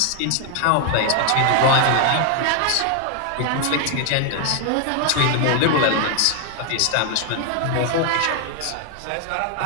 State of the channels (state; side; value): different; both; correlation 0.00